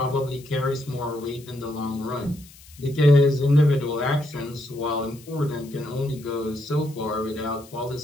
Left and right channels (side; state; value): left; noise; hiss, 22 dB below the sound